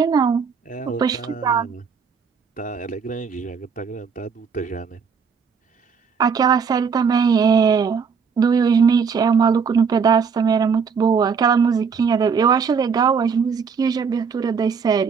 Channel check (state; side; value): quieter; left; 6.0 dB